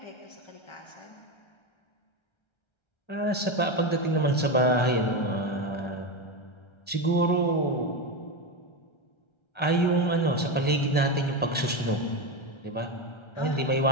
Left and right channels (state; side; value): late; right; 1.3 ms